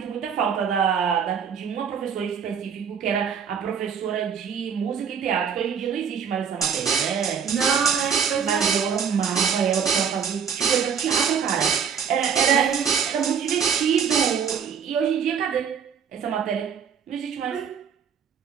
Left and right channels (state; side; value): quieter; left; 7.2 dB